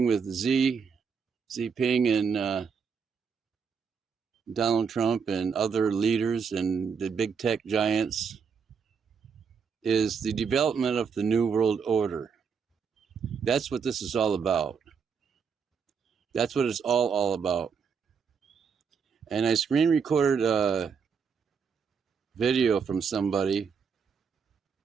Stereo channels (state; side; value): quieter; left; 6.2 dB